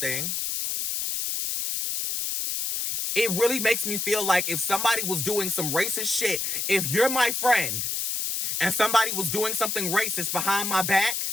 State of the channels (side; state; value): left; noise; hiss, 1 dB below the sound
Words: It really makes me feel like if somebody was doing some racist shit, if you're my friend and somebody was doing something racist behind my back,